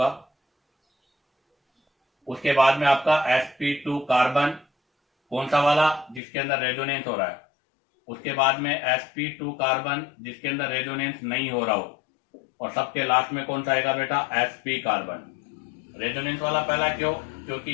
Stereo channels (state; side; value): drops out; right; at 6.2 s